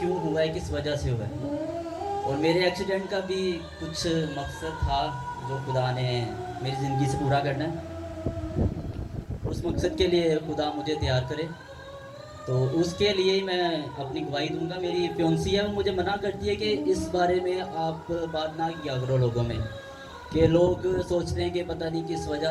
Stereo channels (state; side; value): identical; both; correlation 1.00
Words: हुआ है, किस वजह से हुआ है। और मेरे एक्सीडेंट का भी कुछ मकसद था जो खुदा ने मेरी ज़िंदगी से पूरा करना है। उस मकसद के लिए खुदा मुझे तैयार करे तो उसके लिए ही मैं अपनी गवाही दूंगा। मेरी फियोंसी है, वो मुझे मना करती है कि इस बारे में आप बात ना किया करो लोगों में, कि लोग सोचते हैं कि पता नहीं किस